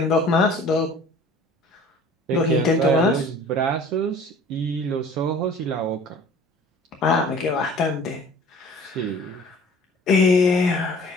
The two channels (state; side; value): normal; both; correlation 0.47